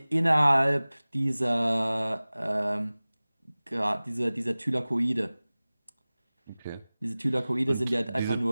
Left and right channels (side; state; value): both; inverted; correlation -0.99